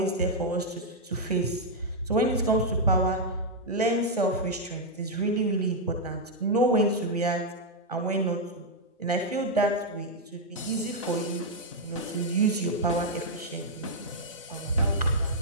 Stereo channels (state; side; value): normal; both; correlation -0.03